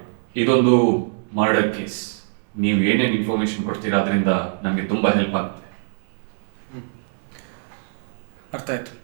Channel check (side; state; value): left; silent; digital silence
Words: ಇದೊಂದು ಮರ್ಡರ್ ಕೇಸ್. ನೀವು ಏನೇನು ಇನ್ಫಾರ್ಮೇಶನ್ ಕೊಡ್ತೀರಾ ಅದರಿಂದ ನಮಗೆ ತುಂಬ ಹೆಲ್ಪ್ ಆಗುತ್ತೆ. ಅರ್ಥ ಆಯಿತು.